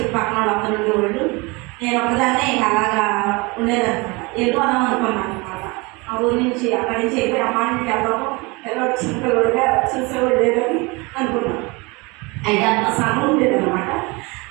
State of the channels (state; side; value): quieter; left; 26.2 dB